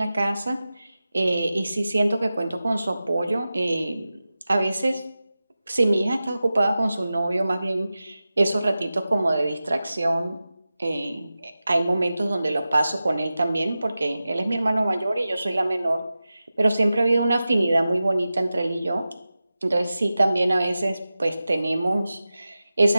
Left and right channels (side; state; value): both; inverted; correlation -0.94